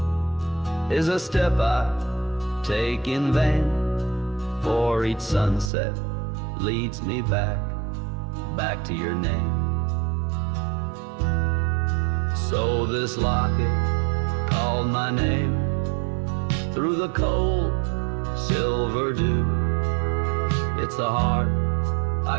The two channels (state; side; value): drops out; left; at 5.7 s